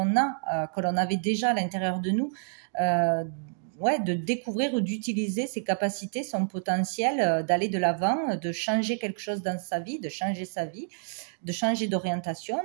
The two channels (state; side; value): silent; left; digital silence